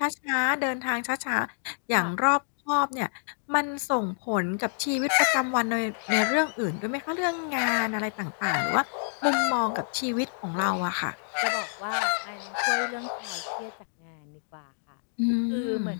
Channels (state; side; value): silent; right; digital silence